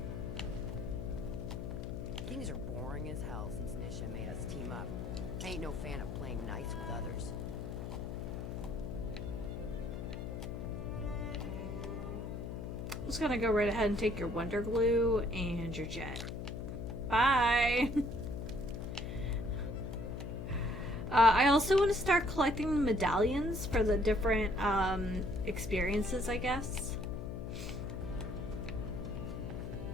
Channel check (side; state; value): left; noise; hum, 6 dB below the sound